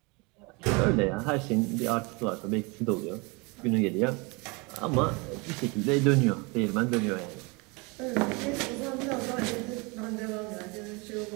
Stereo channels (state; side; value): quieter; left; 28.3 dB